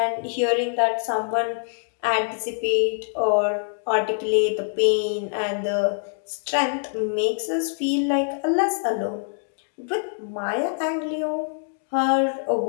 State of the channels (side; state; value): right; silent; digital silence